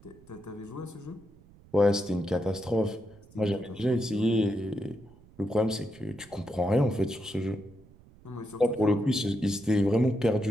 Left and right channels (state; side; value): noise; right; rumble, 25 dB below the sound